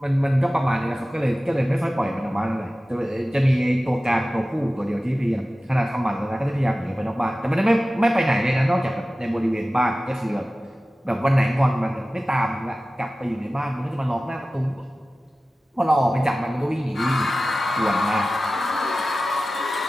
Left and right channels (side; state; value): both; normal; correlation 0.96